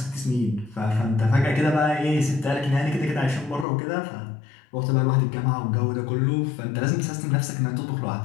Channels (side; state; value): right; drops out; at 3.7 s